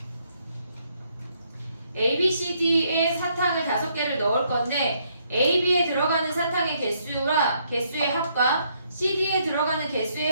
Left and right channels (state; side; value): inverted; both; correlation -0.71